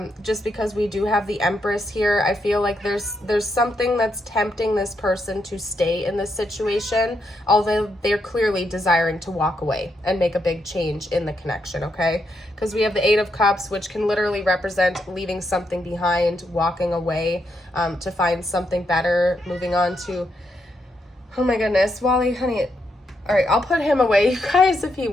Just because we do have the Empress here, I feel like there's something that's tempting this person to stay in this situation, although they're clearly desiring to walk away and make a big change in the connection, okay? Because we have the 8 of Cups, which can literally represent leaving something behind, walking away to find something better, moving on to, oh my goodness, Wally, honey. All right, I'll put him away, you guys, if he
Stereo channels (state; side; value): normal; both; correlation 0.80